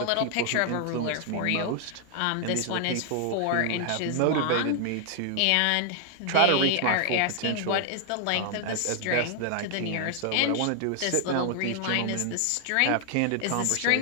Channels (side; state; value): both; different; correlation 0.00